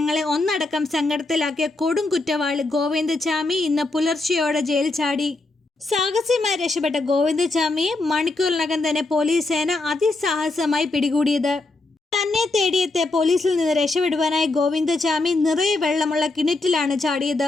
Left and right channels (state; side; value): quieter; right; 3.2 dB